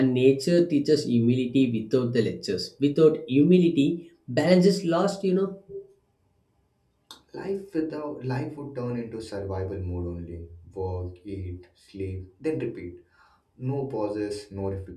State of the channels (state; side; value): identical; both; correlation 1.00